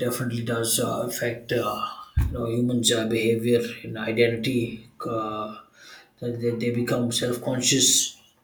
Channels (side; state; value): both; identical; correlation 1.00